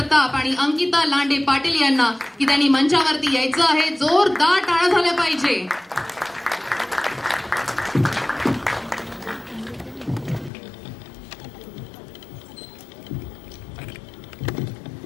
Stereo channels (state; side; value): drops out; right; at 10.5 s